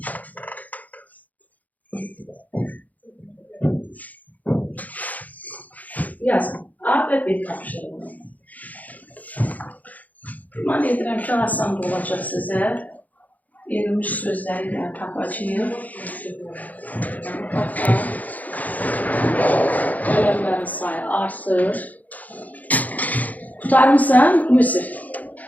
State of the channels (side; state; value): right; late; 0.078 ms